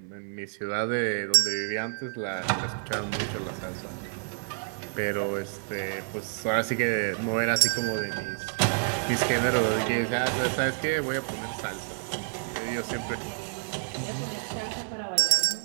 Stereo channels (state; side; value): silent; left; digital silence